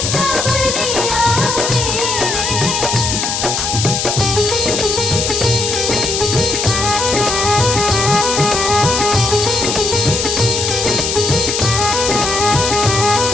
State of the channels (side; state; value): left; noise; hiss, 1 dB below the sound